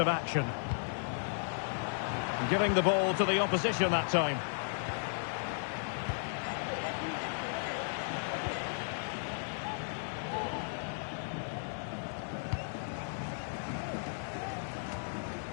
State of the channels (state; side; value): silent; right; digital silence